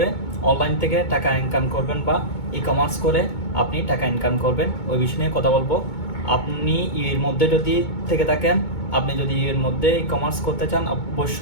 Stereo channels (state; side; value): late; right; 2.2 ms